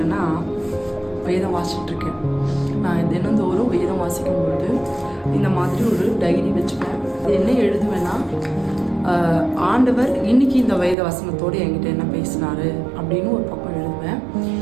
வேதம் வாசிச்சுட்ருக்கேன். நான் தினந்தோறும் வேதம் வாசிக்கும் பொழுது இந்த மாதிரி ஒரு டைரி வச்சுப்பேன். அது என்ன எழுதுவேன்னா, ஆண்டவர் இன்னைக்கு இந்த வேத வசனத்தோடு என்கிட்ட என்ன பேசினாரு அப்படின்னு ஒரு பக்கம் எழுதுவேன்.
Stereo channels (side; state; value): left; drops out; at 11.0 s